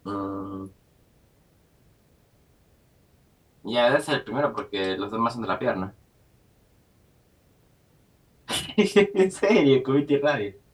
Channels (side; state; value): both; identical; correlation 1.00